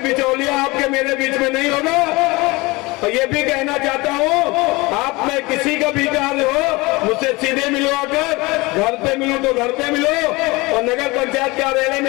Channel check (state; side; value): quieter; right; 23.4 dB